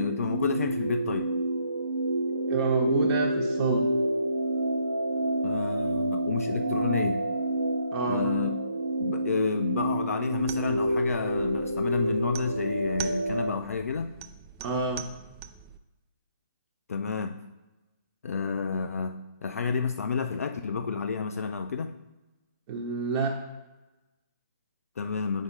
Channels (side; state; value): both; inverted; correlation -0.69